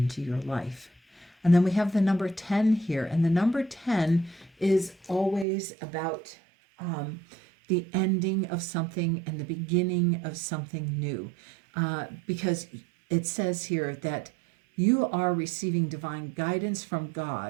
your life. And then we have the number 10 here. And the number 10 is always about the ending of something and the beginning of something new. Because it says here that you are receiving divine guidance from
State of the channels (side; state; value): left; drops out; at 5.5 s